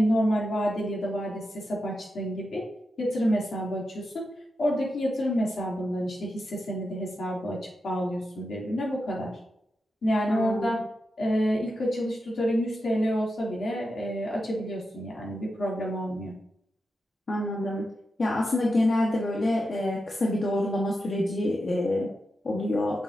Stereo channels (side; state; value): both; normal; correlation 0.88